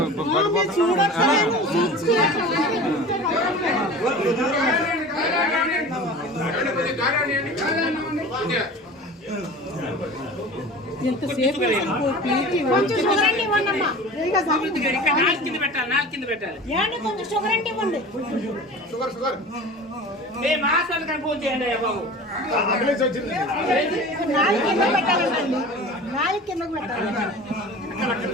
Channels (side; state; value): both; normal; correlation 0.38